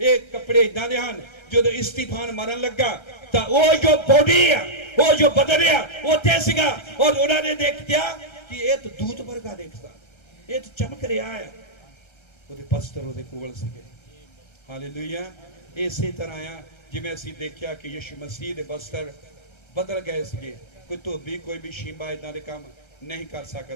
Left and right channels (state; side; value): late; right; 1.3 ms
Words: ਇਹ ਕੱਪੜੇ ਇਦਾਂ ਦੇ ਹਨ, ਜਦੋਂ ਇਸਤੀਫਾਨ ਮਰਨ ਲੱਗਾ ਤਾਂ ਉਹ ਜੋ ਬੋਡੀ ਆ, ਉਹ ਜੋ ਬਦਨ ਆ, ਉੱਥੇ ਸੀਗਾ, ਔਰ ਉਹਨਾਂ ਨੇ ਦੇਖਿਆ ਕਿ ਇਹ ਤਾਂ ਦੂਤ ਵਰਗਾ ਦੇਖਦਾ, ਇਹ ਤਾਂ ਚਮਕ ਰਿਹਾ ਹੈ। ਉਹਦੇ ਬਸਤਰ ਉਹਦੇ ਕੋਲ ਸੀਗੇ। ਹਾਲੇਲੂਇਆ। ਇਸੇ ਤਰ੍ਹਾਂ ਆ ਜਿਵੇਂ ਅਸੀਂ ਦੇਖਿਆ ਕਿ ਯਿਸੂ ਮਸੀਹ ਦੇ ਬਸਤਰ ਬਦਲ ਗਏ ਸੀਗੇ। ਕੋਈ ਧੋਬੀ, ਕੋਈ ਵੀ ਸ਼ੀਂਬਾ ਇਦਾਂ ਦੇ ਕੰਮ ਨਹੀਂ ਕਰ